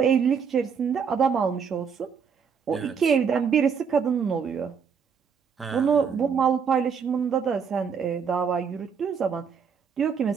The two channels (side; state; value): left; quieter; 6.5 dB